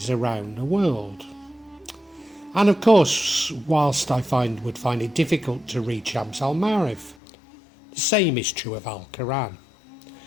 around the world. And of course, whilst I would find it difficult to read Shams al-Marith, the same is true of Al-Quran.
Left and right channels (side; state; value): right; drops out; at 7.2 s